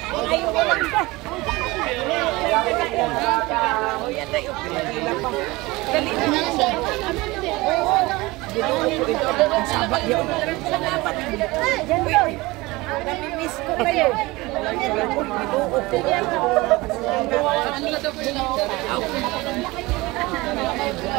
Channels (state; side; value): quieter; left; 21.7 dB